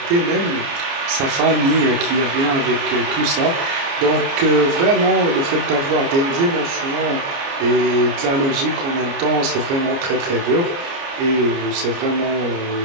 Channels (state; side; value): late; left; 29 ms